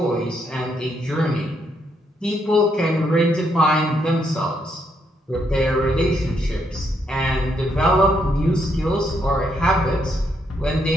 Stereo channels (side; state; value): both; normal; correlation 0.76